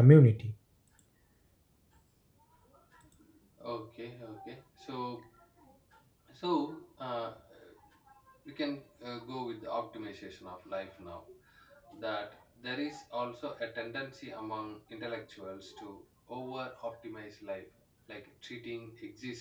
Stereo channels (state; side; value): identical; both; correlation 1.00